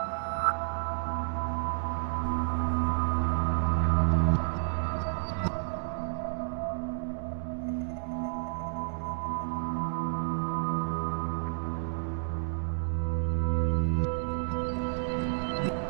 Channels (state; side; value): silent; left; digital silence